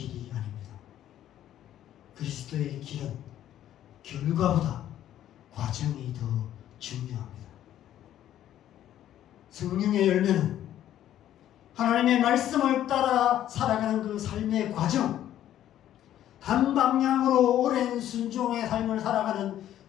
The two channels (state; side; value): quieter; right; 11.8 dB